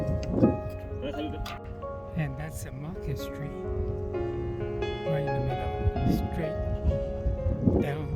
And that's the Market Street, right in the middle, straight down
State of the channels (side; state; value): both; identical; correlation 1.00